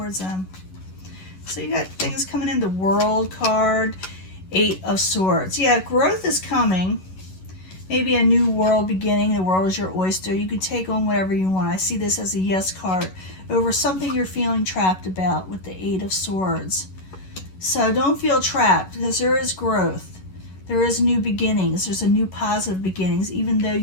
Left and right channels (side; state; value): right; late; 11 ms